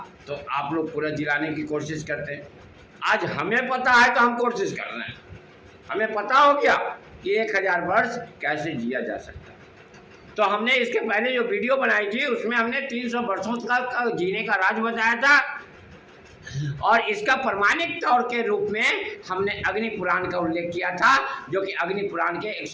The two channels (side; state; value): both; identical; correlation 1.00